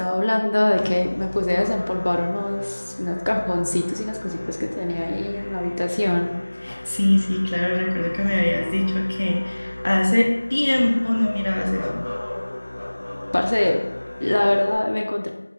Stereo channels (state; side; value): inverted; both; correlation -1.00